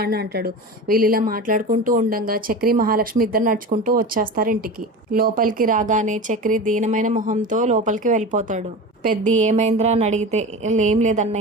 అని అంటాడు. వీళ్ళు ఇలా మాట్లాడుకుంటూ ఉండగా చక్రి మహాలక్ష్మి ఇద్దరు నడుచుకుంటూ వచ్చేస్తారు ఇంటికి. లోపలికి రాగానే చక్రి దీనమైన మొహంతో లోపలికి వెళ్ళిపోతాడు. పెద్ది, ఏమైందిరా అని అడిగితే, ఏం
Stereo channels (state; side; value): normal; both; correlation 0.29